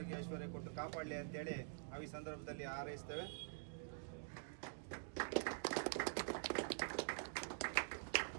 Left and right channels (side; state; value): left; silent; digital silence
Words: ಐಶ್ವರ್ಯ ಕೊಟ್ಟು ಕಾಪಾಡಲಿ ಅಂತೇಳಿ ನಾವು ಈ ಸಂದರ್ಭದಲ್ಲಿ ಹಾರೈಸ್ತೇವೆ.